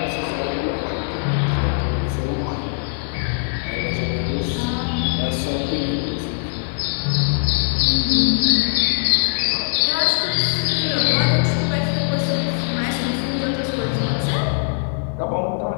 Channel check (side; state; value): right; silent; digital silence